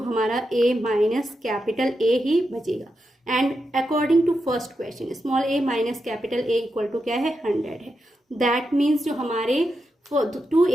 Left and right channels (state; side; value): normal; both; correlation 0.87